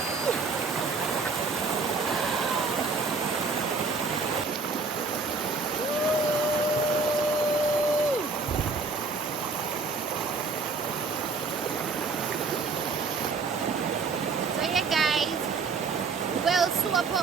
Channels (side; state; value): left; quieter; 4.3 dB